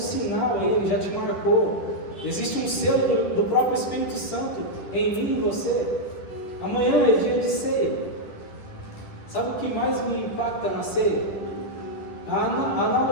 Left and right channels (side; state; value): right; late; 10 ms